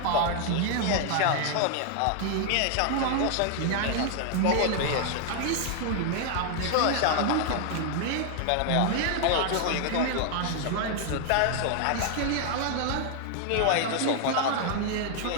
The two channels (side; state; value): both; different; correlation 0.00